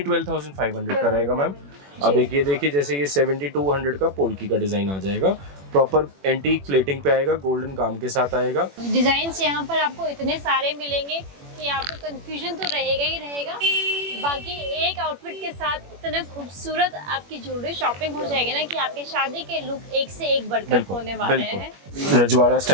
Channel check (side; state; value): left; late; 21 ms